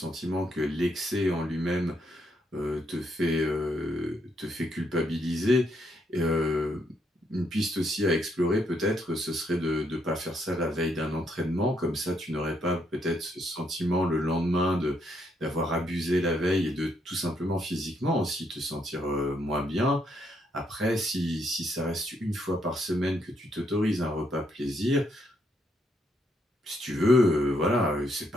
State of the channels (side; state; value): both; normal; correlation 0.75